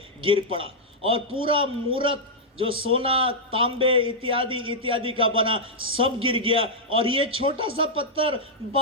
गिर पड़ा, और पूरा मूरत जो सोना, तांबे इत्यादि इत्यादि का बना सब गिर गया, और ये छोटा सा पत्थर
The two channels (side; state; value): both; normal; correlation -0.06